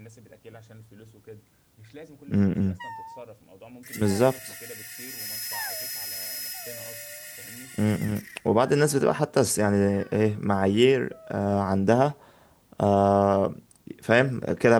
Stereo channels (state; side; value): identical; both; correlation 1.00